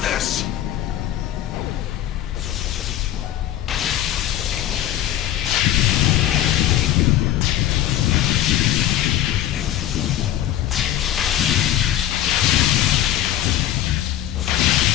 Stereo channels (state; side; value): quieter; right; 12.3 dB